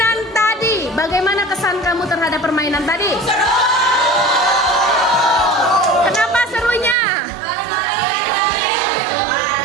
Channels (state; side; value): drops out; left; at 7.0 s